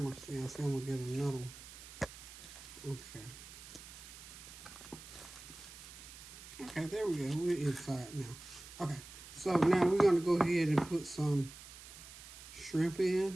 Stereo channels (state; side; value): noise; right; hiss, 15 dB below the sound